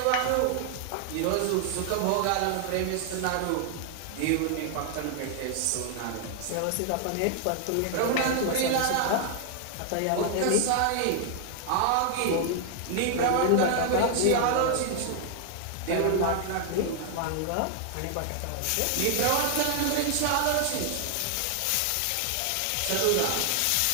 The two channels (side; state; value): both; different; correlation 0.00